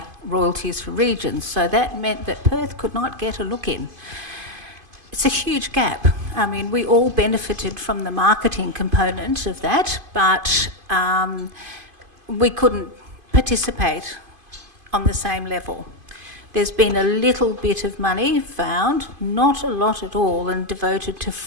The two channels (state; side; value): late; left; 2.5 ms